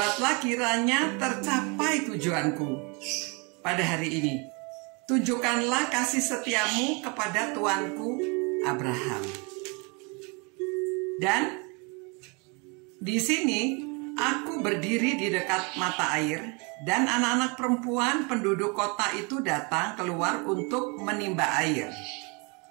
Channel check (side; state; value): left; quieter; 31.5 dB